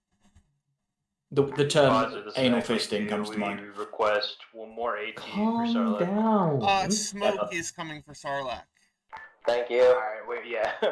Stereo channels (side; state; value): both; identical; correlation 1.00